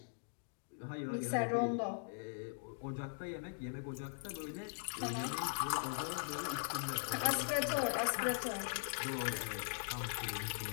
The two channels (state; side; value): silent; right; digital silence